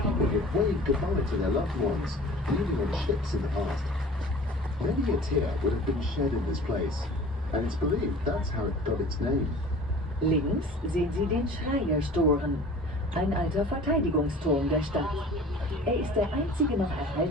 people would wave goodbye to their loved ones, leaving on ships in the past. Many a tear would have been shed in this place, and it's believed that's how it got its name. Links sehen Sie den Schreierstoren, ein alter Verteidigungsturm der Stadt. Er ist der einzige noch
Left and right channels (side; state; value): both; normal; correlation 0.43